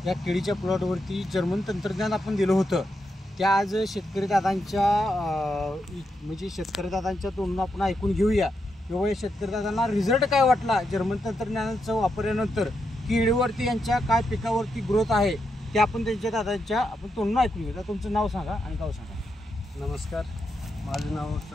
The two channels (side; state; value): both; normal; correlation 0.84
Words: या केळीच्या प्लॉटवरती जर्मन तंत्रज्ञान आपण दिलं होतं. त्या आज शेतकरी दादांच्या म्हणजे शेतकरी दादांच्या तोंडून आपण ऐकून घेऊया किंवा या शेतकरी दादांना रिझल्ट काय वाटला जर्मन तंत्रज्ञानाचा वापरल्यानंतर, केळीवरती यांच्या काय पिकावरती ग्रोथ आहे ते आपण त्यांच्या दादांच्या आपण तोंडून ऐकून घेऊया. तुमचं नाव सांगा आणि गाव सांगा. नमस्कार, माझं नाव